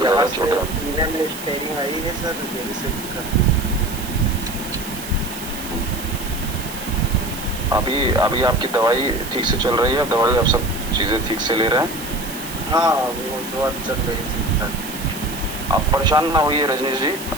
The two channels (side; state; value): right; noise; hiss, 12 dB below the sound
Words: ज्यादा से छोटा। सीने में स्टेरिंग आई है सर, यही से दिक्कत है। अभी आपकी दवाई ठीक से चल रही है? दवाई आप सब चीजें ठीक से ले रहे हैं? हाँ, वो दवा चल रही थी। आप परेशान ना होइए रजनीश जी,